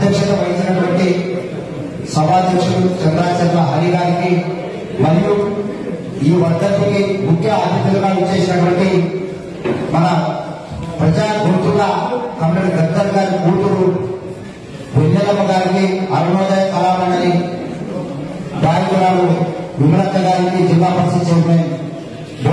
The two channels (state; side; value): identical; both; correlation 1.00